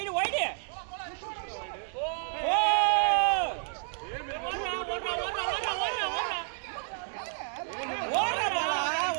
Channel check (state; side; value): silent; left; 57 dB below the other